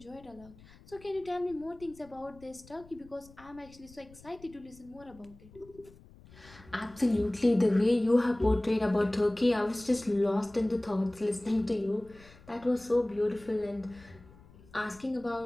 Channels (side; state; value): left; noise; rumble, 23 dB below the sound